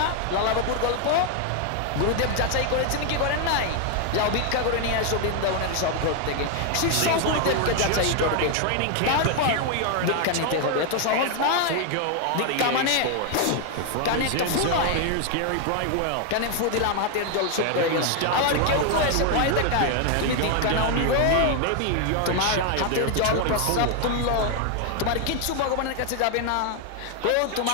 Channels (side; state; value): both; different; correlation 0.00